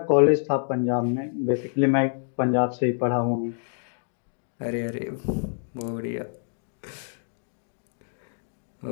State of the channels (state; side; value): silent; right; digital silence